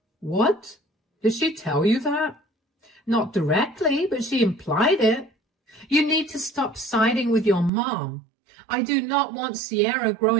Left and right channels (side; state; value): left; drops out; at 7.7 s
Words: What? Did she tell you that? Not directly, but she implied it. You need to stop siding with your mom. I do not want Sierra